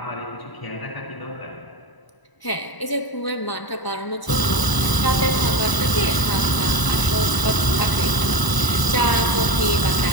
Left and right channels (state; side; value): late; right; 1.0 ms